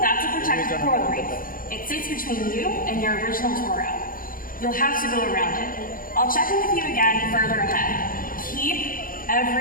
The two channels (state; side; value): late; right; 0.41 ms